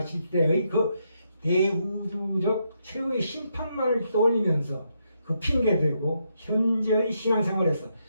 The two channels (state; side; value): inverted; both; correlation -0.79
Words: 때의 그 대우주적 최후의 심판만을 떠올리면서 그 핑계대고 현재의 신앙생활에서